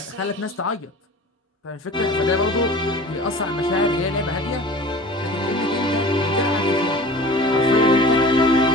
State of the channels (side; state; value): both; normal; correlation 0.41